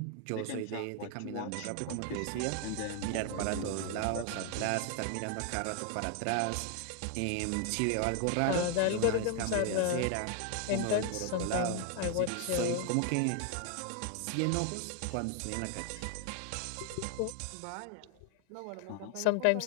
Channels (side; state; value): both; different; correlation 0.00